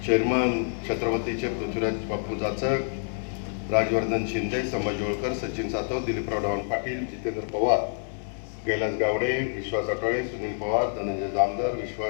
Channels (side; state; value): right; silent; digital silence